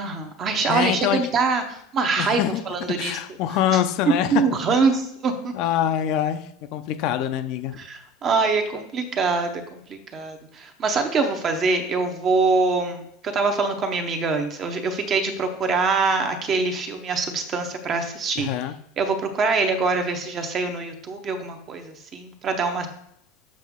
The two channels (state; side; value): normal; both; correlation 0.46